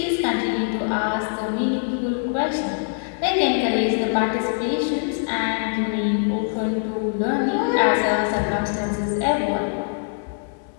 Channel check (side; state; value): right; silent; digital silence